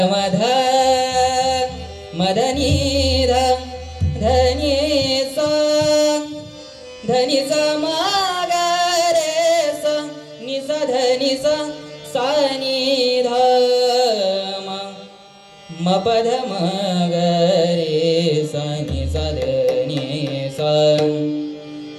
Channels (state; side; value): identical; both; correlation 1.00